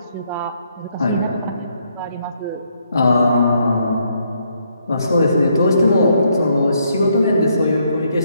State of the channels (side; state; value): both; inverted; correlation -0.73